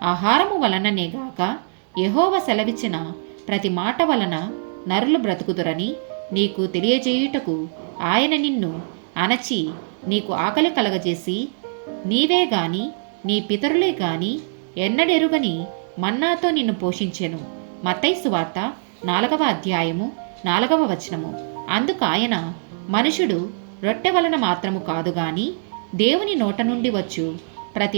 ఆహారము వలననేగాక యెహోవా సెలవిచ్చిన ప్రతి మాట వలన నరులు బ్రతుకుదురని నీకు తెలియజేయుటకు ఆయన నిన్ను అణచి నీకు ఆకలి కలగజేసి, నీవే గాని నీ పితరులే గాని ఎన్నడెరుగని మన్నాతో నిన్ను పోషించెను. మత్తయి సువార్త 4వ అధ్యాయము 4వ వచనము. అందుకాయన, మనుషుడు రొట్టె వలన మాత్రము కాదు గాని దేవుని నోట నుండి వచ్చు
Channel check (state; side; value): silent; left; digital silence